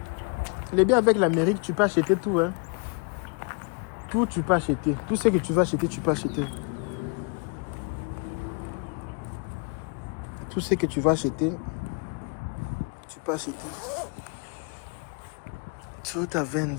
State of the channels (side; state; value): right; quieter; 35.0 dB